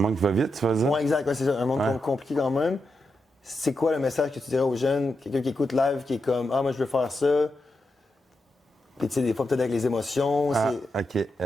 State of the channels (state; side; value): normal; both; correlation 0.86